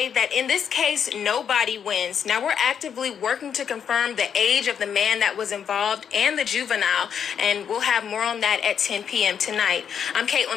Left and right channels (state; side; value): quieter; right; 7.9 dB